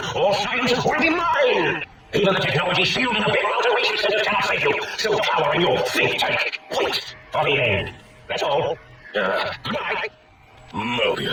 all sciences will be mine. Even the technology sealed in the Big Mountain Research Center cannot save you. Still power in your think tank. Wait for the end. That's all. Goodbye.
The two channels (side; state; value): both; identical; correlation 1.00